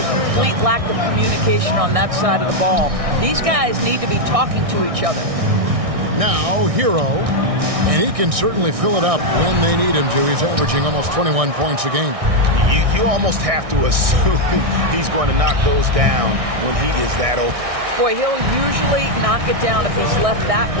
complete lack of communication on that side of the ball. These guys need to be talking to each other. Now, Hero, and he can certainly fill it up when they need him to. He's averaging almost 21 points a game. You almost have to assume he's going to knock those down when he is that open. Boy, he'll usually knock it down if he's left that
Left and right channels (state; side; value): late; left; 1.6 ms